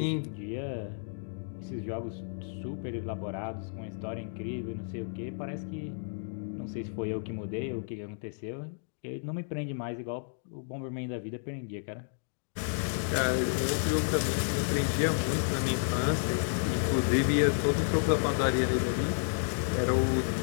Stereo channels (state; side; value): silent; right; digital silence